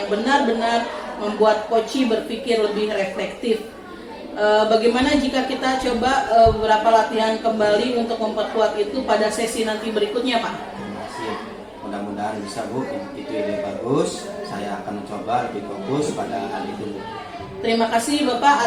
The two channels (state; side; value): identical; both; correlation 1.00